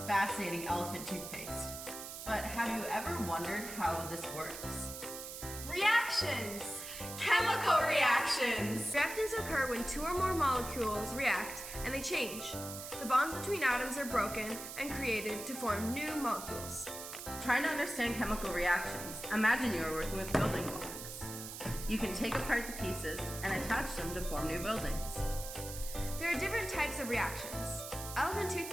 fascinating elephant toothpaste. But have you ever wondered how this works? Reactions! Chemical reactions! Reactions occur when two or more molecules react and they change. The bonds between atoms are broken and created to form new molecules. Trying to understand chemical reactions, imagine you are working with building blocks. You can take apart the pieces and attach them to form new buildings. There are different types of reactions. Elephant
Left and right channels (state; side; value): noise; right; hiss, 9 dB below the sound